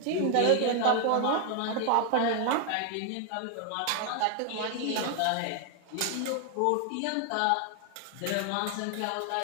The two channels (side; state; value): both; different; correlation 0.00